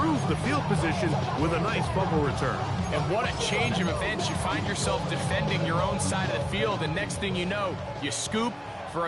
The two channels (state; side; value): identical; both; correlation 1.00